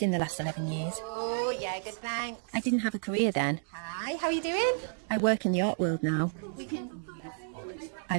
in the last 11 years. Oh, yeah, good, thanks. I didn't have a career then. Hi, how are you doing? I work in the art world now.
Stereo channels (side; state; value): left; silent; digital silence